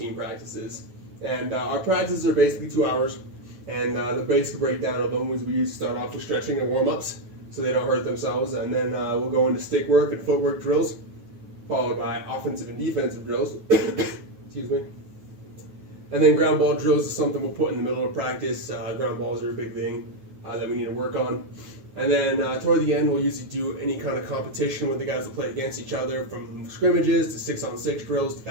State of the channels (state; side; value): late; left; 9.3 ms